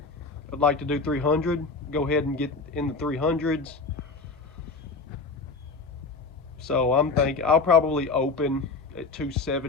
like to do 300, go ahead and get in the 300s. So I'm thinking I'll probably open at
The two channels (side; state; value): right; quieter; 4.1 dB